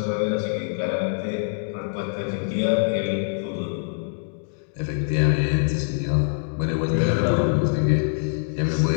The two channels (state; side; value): silent; right; digital silence